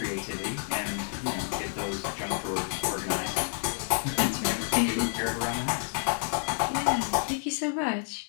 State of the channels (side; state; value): right; silent; 58 dB below the other